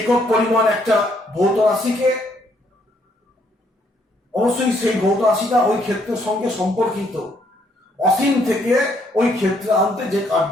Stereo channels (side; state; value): both; normal; correlation 0.69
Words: পরিমাণ একটা ভৌত রাশিকে, অবশ্যই সেই ভৌত রাশিটা ওই ক্ষেত্রের সঙ্গে সম্পর্কিত, অসীম থেকে ওই ক্ষেত্রে আনতে যে কার্য